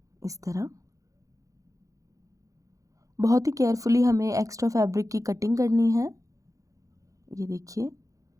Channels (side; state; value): left; late; 0.16 ms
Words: इस तरह। बहुत ही केयरफुली हमें एक्स्ट्रा फैब्रिक की कटिंग करनी है। ये देखिए,